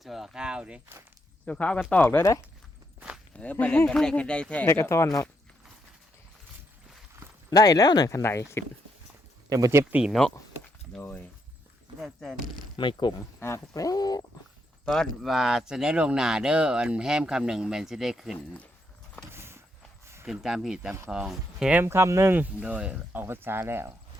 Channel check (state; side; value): normal; both; correlation 0.78